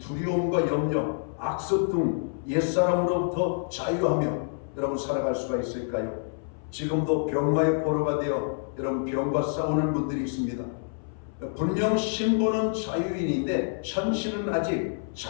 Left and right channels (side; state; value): right; silent; 57 dB below the other